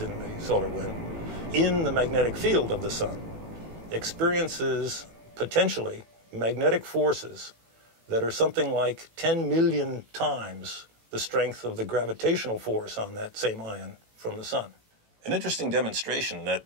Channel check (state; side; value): late; left; 18 ms